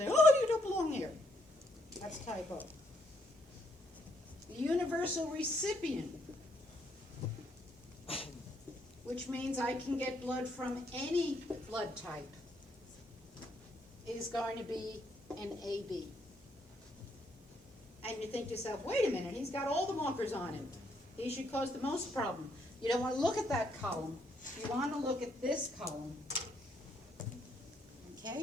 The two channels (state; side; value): normal; both; correlation 0.72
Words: oh, you don't belong here. That's typo. The universal recipient, which means I can get blood from any blood type, is going to be an AB. And you think to yourself, wait a minute, he's got all the markers on him. He should cause the most problem. You don't want to look at that column. You want to look at this column.